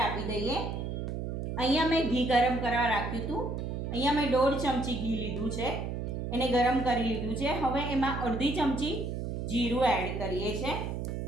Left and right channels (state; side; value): noise; right; hum, 4 dB below the sound